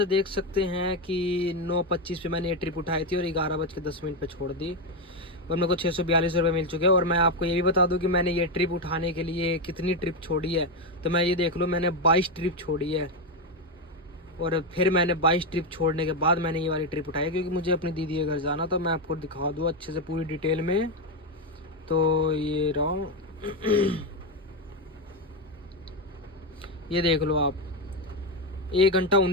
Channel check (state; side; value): normal; both; correlation 0.09